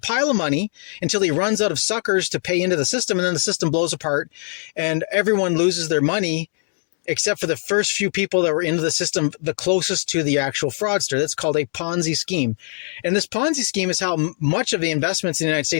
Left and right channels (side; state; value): right; silent; digital silence